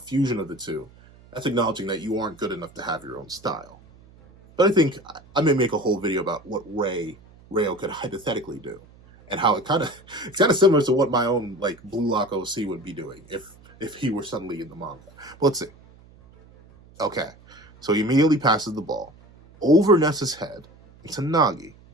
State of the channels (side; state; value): right; noise; hum, 25 dB below the sound